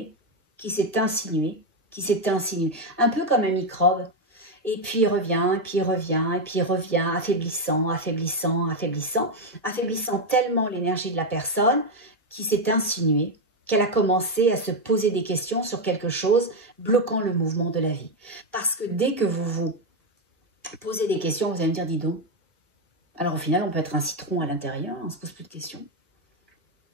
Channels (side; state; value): both; normal; correlation 0.06